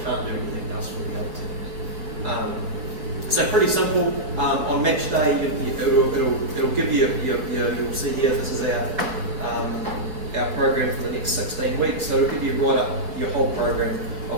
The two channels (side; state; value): left; late; 5.5 ms